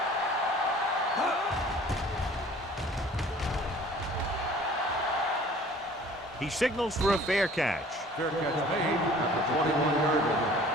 He signals for a fair catch. Fair catch made at the 21-yard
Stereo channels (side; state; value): both; normal; correlation 0.50